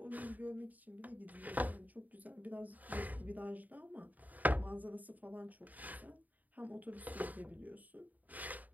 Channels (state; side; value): late; left; 0.079 ms